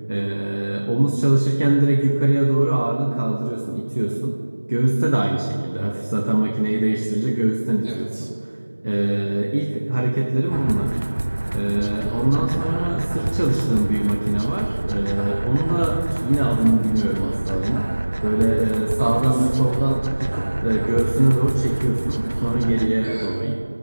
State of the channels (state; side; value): inverted; both; correlation -1.00